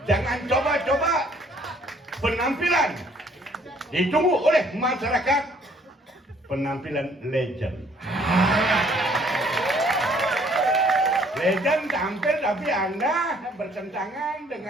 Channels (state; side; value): normal; both; correlation 0.61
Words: Jangan coba-coba penampilan ditunggu oleh masyarakat, penampilan legend. Legend tampil tapi Anda bertentangan